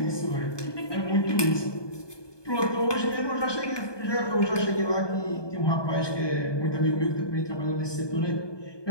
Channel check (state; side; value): late; right; 1.2 ms